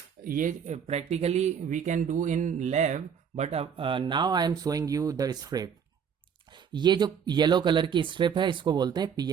ये practically we can do in lab, but now I am showing you the strip. ये जो येलो कलर की स्ट्रिप है इसको बोलते हैं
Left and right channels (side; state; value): left; quieter; 7.4 dB